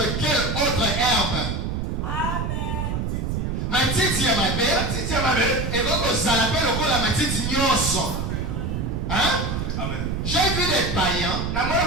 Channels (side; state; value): right; noise; rumble, 1 dB below the sound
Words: quelle autre herbe. Matiti ya mabe, et donc ça l'appelle le coup la matiti nyoso. Hein? J'ai vu des païens